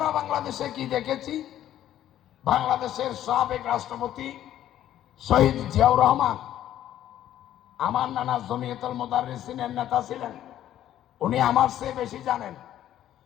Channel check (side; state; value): right; quieter; 12.0 dB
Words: বাংলাদেশে কি দেখেছি? বাংলাদেশের সাবেক রাষ্ট্রপতি শহীদ জিয়াউর রহমান আমার নানা জমিয়তুল মুদাররিসিনের নেতা ছিলেন, উনি আমার চেয়ে বেশি জানেন।